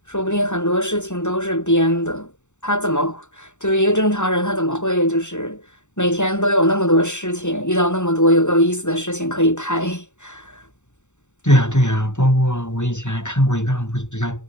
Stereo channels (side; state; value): right; late; 0.84 ms